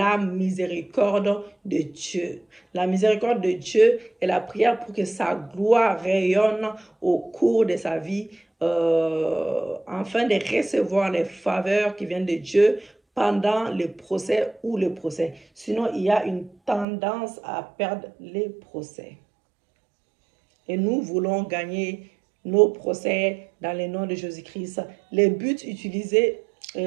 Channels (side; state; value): left; drops out; at 16.9 s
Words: miséricorde de Dieu. La miséricorde de Dieu est la prière pour que sa gloire rayonne au cours de sa vie, afin de recevoir les faveurs qui viennent de Dieu pendant le procès ou le procès. Sinon, il y a une tendance à perdre les procès. Et nous voulons gagner nos procès dans le nom de Jésus-Christ. Les buts utilisés,